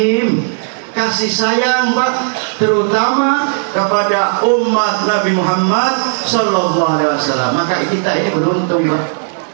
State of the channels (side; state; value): left; silent; digital silence